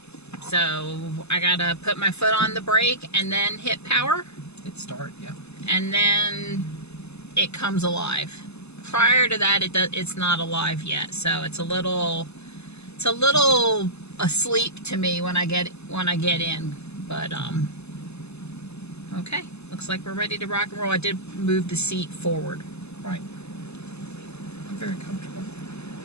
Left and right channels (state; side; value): late; right; 0.80 ms